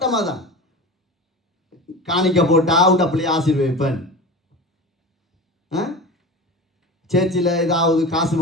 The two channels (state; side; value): normal; both; correlation 0.30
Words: அதான். காணிக்க போட்டா உண்ட பிள்ளையை ஆசீர்வதிப்பேன். சேர்ச்சில் ஏதாவது காசு